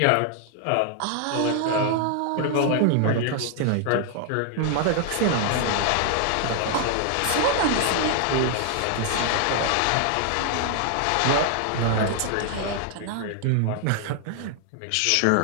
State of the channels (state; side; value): different; both; correlation 0.00